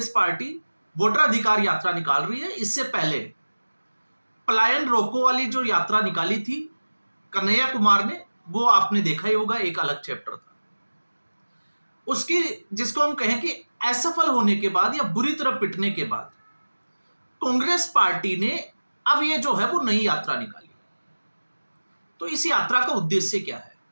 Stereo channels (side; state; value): both; inverted; correlation -1.00